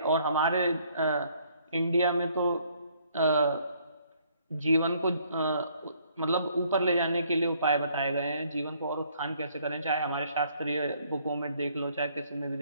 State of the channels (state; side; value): inverted; both; correlation -0.64